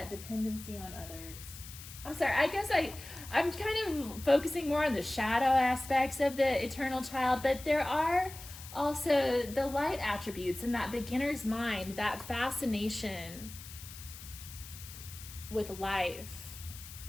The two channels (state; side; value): noise; left; hiss, 14 dB below the sound